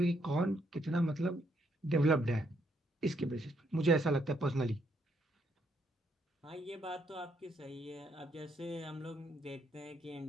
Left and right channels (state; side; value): normal; both; correlation 0.74